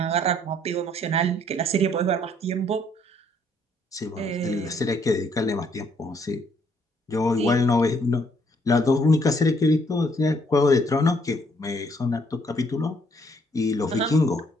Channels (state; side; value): normal; both; correlation 0.67